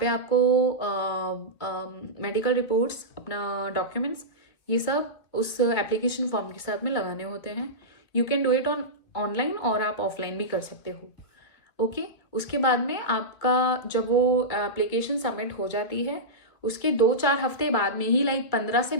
पे आपको मेडिकल रिपोर्ट्स, अपना डॉक्यूमेंट्स, ये सब उस एप्लीकेशन फॉर्म के साथ में लगाने होते हैं। You can do it online और आप ऑफलाइन भी कर सकते हो। ओके, उसके बाद में आपका जब वो एप्लीकेशन सबमिट हो जाती है उसके 2-4 हफ्ते बाद में ही, लाइक 15 से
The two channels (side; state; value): right; late; 2.2 ms